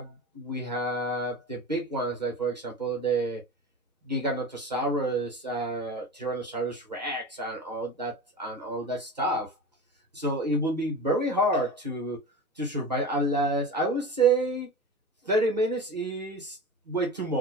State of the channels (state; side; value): normal; both; correlation 0.31